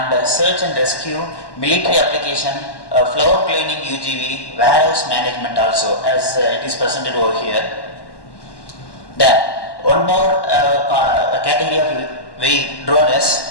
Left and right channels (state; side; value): late; right; 1.1 ms